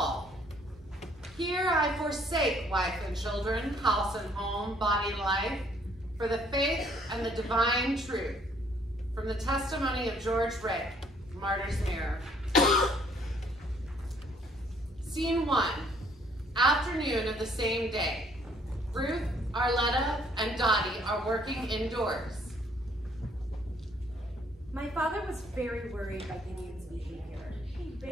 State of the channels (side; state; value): both; normal; correlation 0.63